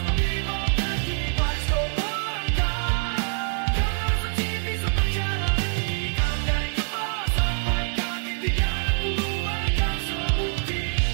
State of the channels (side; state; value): left; silent; digital silence